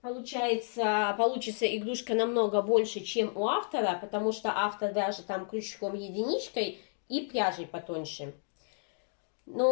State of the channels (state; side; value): silent; right; 57 dB below the other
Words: получится игрушка намного больше, чем у автора, потому что автор вяжет там крючком единичкой и пряжей потоньше.